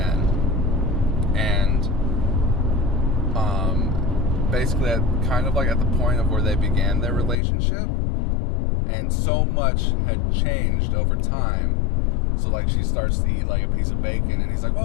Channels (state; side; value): drops out; right; at 7.4 s